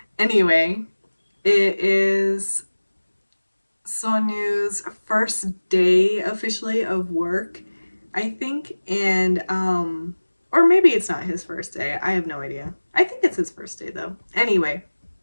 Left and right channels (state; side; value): inverted; both; correlation -1.00